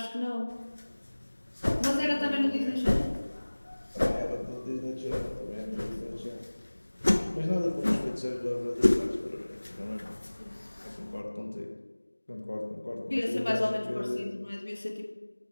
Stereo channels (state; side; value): inverted; both; correlation -1.00